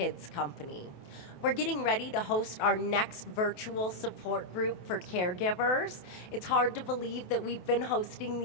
company. We're getting ready to host our next virtual support group for caregivers. It's hard to believe that we've been hosting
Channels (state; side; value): late; right; 28 ms